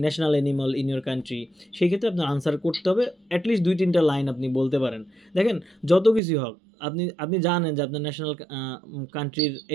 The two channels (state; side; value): drops out; left; at 6.2 s